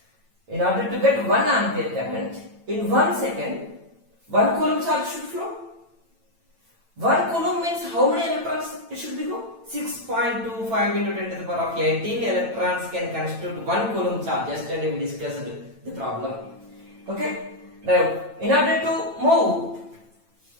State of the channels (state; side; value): late; left; 8.9 ms